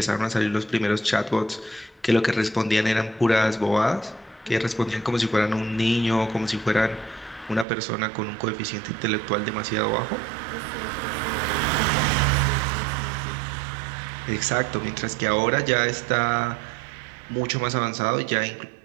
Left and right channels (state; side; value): drops out; left; at 7.7 s